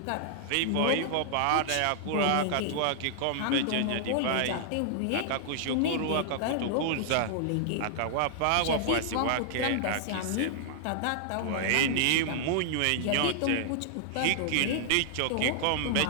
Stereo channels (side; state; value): both; different; correlation -0.01